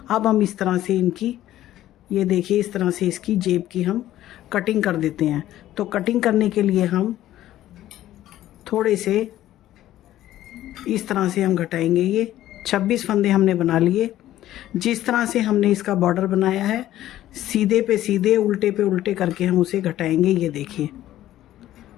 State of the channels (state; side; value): quieter; right; 13.6 dB